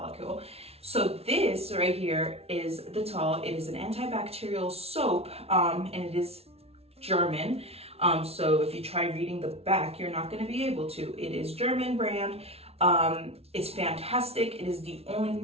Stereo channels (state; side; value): late; left; 0.30 ms